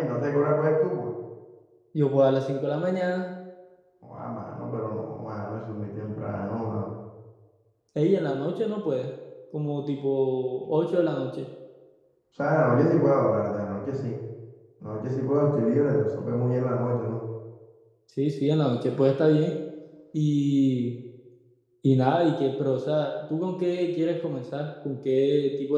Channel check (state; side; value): identical; both; correlation 1.00